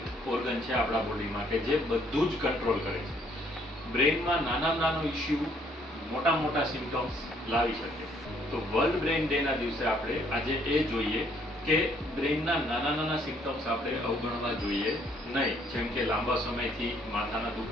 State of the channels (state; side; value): normal; both; correlation 0.65